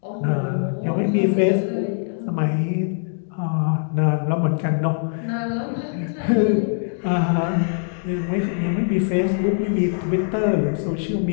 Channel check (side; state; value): right; silent; digital silence